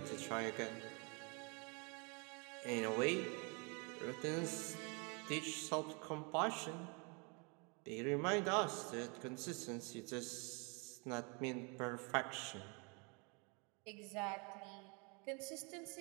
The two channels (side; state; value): left; quieter; 32.6 dB